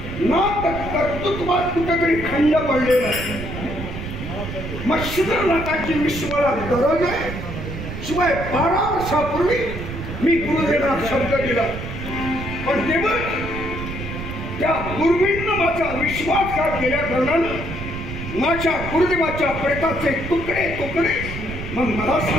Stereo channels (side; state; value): right; noise; rumble, 7 dB below the sound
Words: ना कर्तृत्वात कुठेतरी खंड पडलेला आहे. मत्स्यधर नाथाची विश्वाला गरज आहे. शिवाय 12 वर्षापूर्वी मी गुरुदेवाला शब्द दिला, पण तेव्हा त्या गुरुजींना माझा विश्वासघात केल्या कारणानं माझ्या गुरुदेवाच्या प्रेताचे तुकडे तुकडे. मग मला